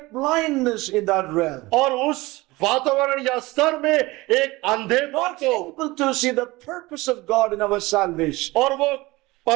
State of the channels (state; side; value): quieter; left; 21.1 dB